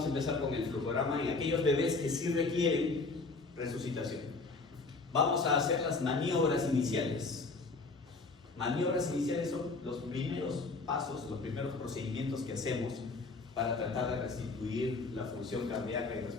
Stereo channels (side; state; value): right; quieter; 3.8 dB